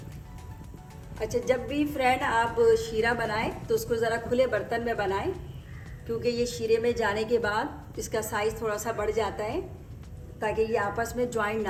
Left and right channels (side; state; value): both; identical; correlation 1.00